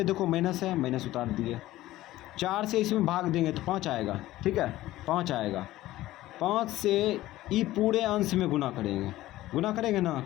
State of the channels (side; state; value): right; quieter; 15.9 dB